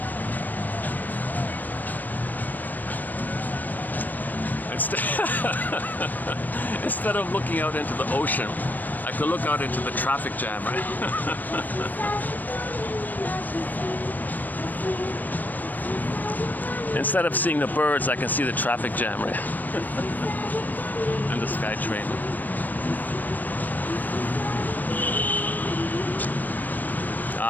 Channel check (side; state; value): right; late; 0.086 ms